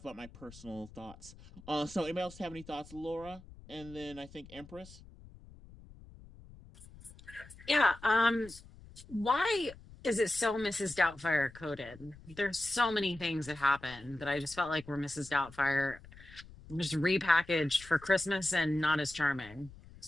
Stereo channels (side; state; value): left; noise; rumble, 20 dB below the sound